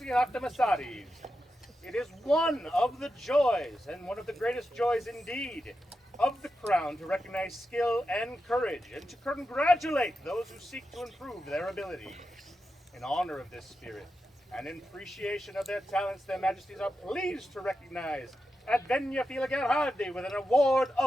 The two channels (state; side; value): normal; both; correlation 0.89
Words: Achaxe. It is one of the joys, and one of the greatest joys indeed, of the crown to recognize skill and courage, and to congratulate those who seek to improve their abilities. In honor of this spirit, and in appreciation of their talents, their Majesties are pleased to recognize Advenia Filgarhalde with an award